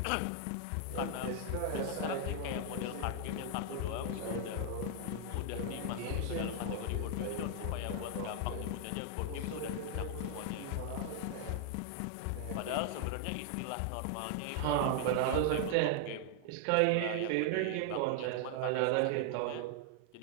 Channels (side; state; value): both; different; correlation 0.00